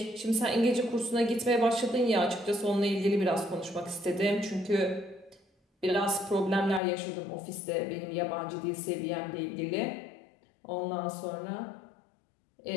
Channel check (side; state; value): right; drops out; at 6.8 s